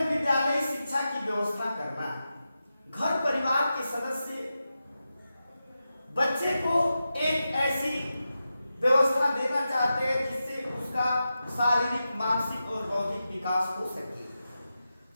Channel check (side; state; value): both; inverted; correlation -0.91